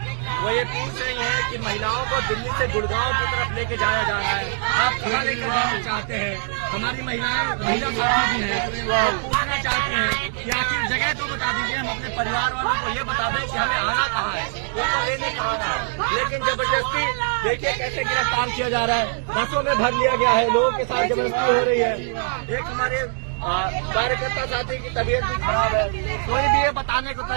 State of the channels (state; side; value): silent; left; 64 dB below the other